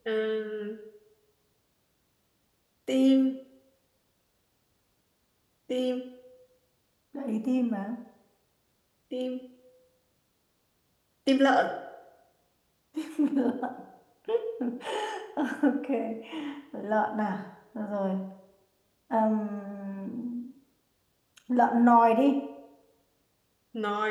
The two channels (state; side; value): identical; both; correlation 1.00